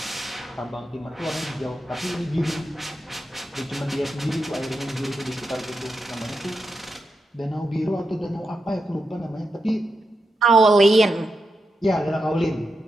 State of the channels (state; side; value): normal; both; correlation 0.87